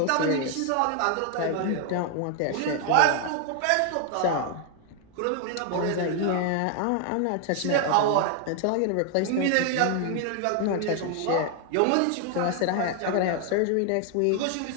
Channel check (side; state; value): both; different; correlation 0.00